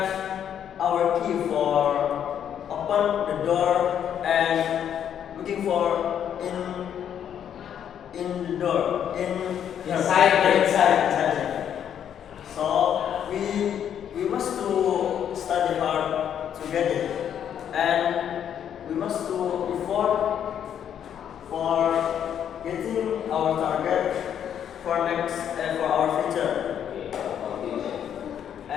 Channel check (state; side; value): quieter; right; 9.2 dB